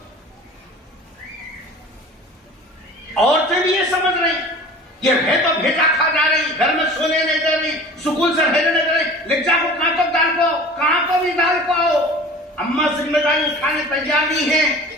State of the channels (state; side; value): normal; both; correlation 0.41